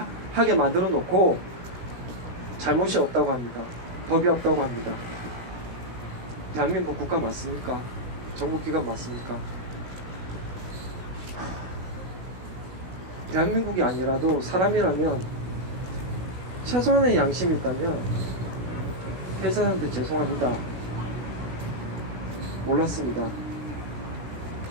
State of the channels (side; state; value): left; late; 16 ms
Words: 하게 만들어 놓고 잘못이 없다고 합니다. 법이 없다고 합니다. 대한민국 국가 맞습니까? 정부기관 맞습니까? 대한민국이 아니라도 사람이라면 최소한의 양심이 있다면 회사한테 죄송합니다. 몰랐습니다.